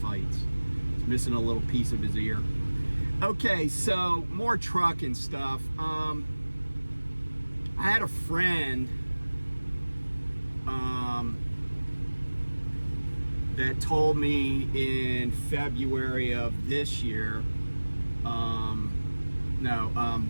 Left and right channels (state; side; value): inverted; both; correlation -1.00